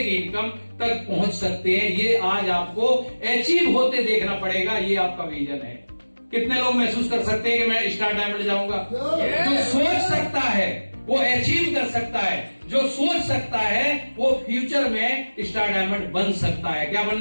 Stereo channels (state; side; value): inverted; both; correlation -1.00